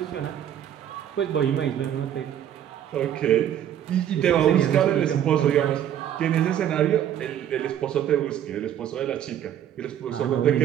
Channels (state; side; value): quieter; left; 10.4 dB